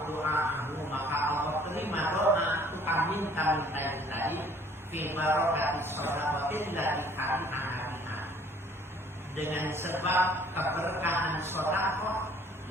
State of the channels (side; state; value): both; normal; correlation 0.57